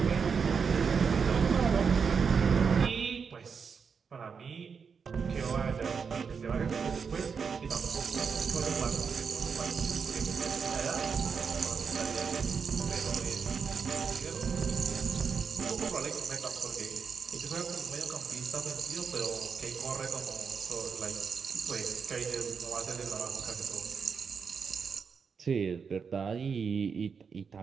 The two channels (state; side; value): quieter; left; 6.0 dB